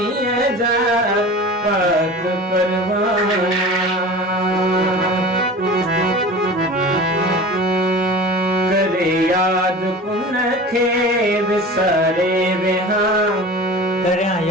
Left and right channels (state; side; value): normal; both; correlation 0.36